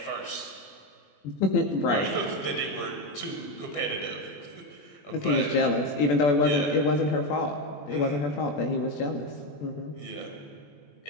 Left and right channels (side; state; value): right; late; 21 ms